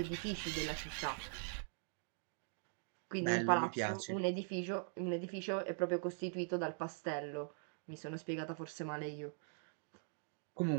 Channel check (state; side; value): silent; left; digital silence